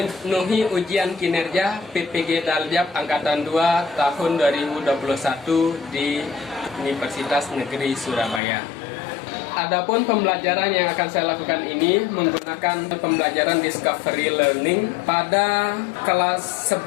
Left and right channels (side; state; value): right; drops out; at 8.4 s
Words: ujian kinerja PPG Daljab Angkatan 2 tahun 2021 di Universitas Negeri Surabaya. Adapun pembelajaran yang akan saya lakukan ini menggunakan pembelajaran Discovery Learning pada kelas